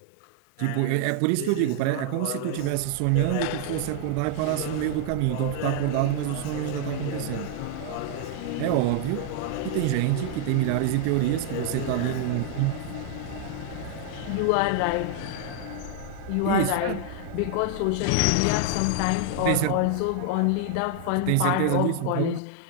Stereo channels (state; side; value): different; both; correlation 0.00